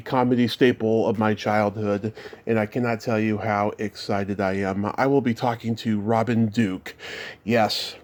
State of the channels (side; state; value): both; identical; correlation 1.00